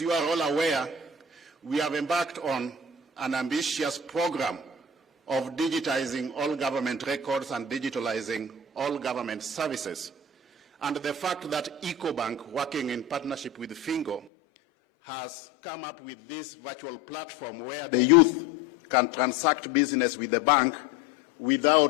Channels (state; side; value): drops out; right; at 14.2 s